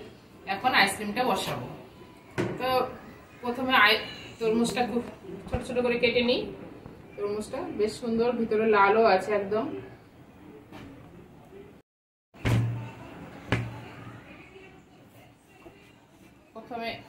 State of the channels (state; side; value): identical; both; correlation 1.00